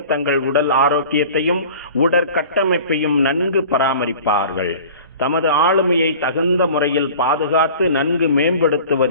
தங்கள் உடல் ஆரோக்கியத்தையும் உடற்கட்டமைப்பையும் நன்கு பராமரிப்பார்கள். தமது ஆளுமையை தகுந்த முறையில் பாதுகாத்து நன்கு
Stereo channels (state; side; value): inverted; both; correlation -0.42